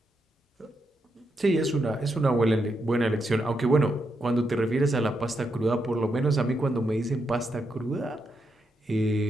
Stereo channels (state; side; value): normal; both; correlation 0.82